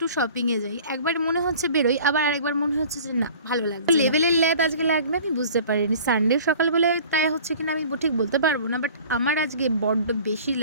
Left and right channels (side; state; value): both; inverted; correlation -0.46